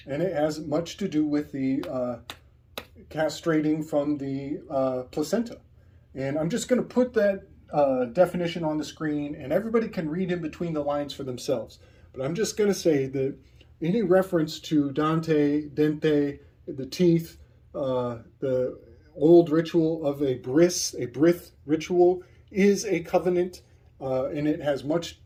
it has much to do with the castrating from the placenta. And I'm just going to put that definition on the screen, and everybody can read in between the lines for themselves. But I'm just going to say that any reference to Dante, the teeth, the old ritual of a brith ritual is a covenant, and it has much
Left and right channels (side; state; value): both; identical; correlation 1.00